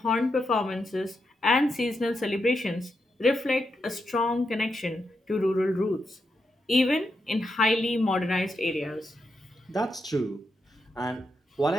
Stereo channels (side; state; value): both; normal; correlation 0.84